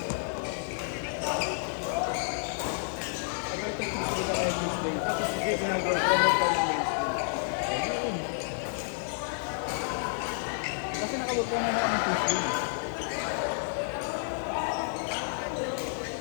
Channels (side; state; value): right; silent; 58 dB below the other